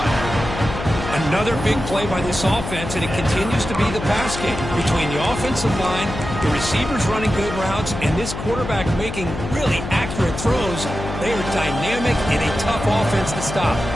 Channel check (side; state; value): left; noise; hum, 7 dB below the sound